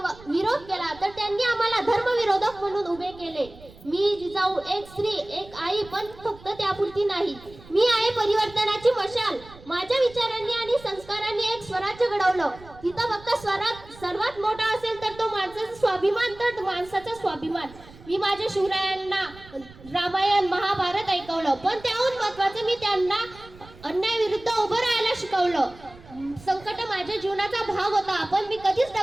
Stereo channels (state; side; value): noise; right; rumble, 21 dB below the sound